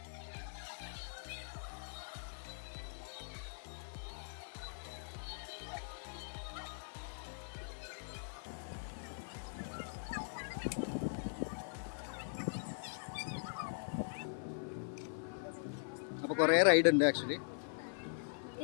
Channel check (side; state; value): right; silent; 50 dB below the other